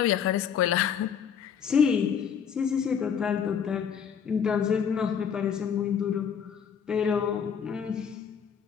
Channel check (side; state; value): right; quieter; 7.5 dB